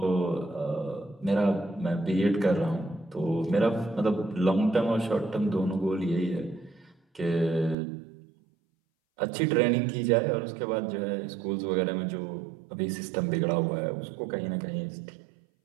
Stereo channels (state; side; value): drops out; left; at 7.8 s